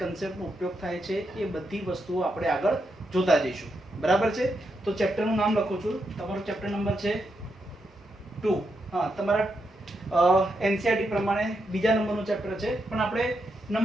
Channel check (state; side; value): normal; both; correlation 0.83